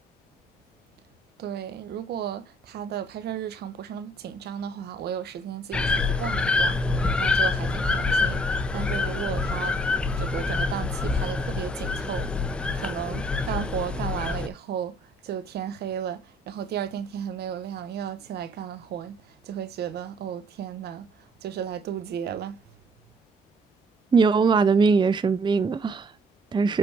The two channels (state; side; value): normal; both; correlation 0.62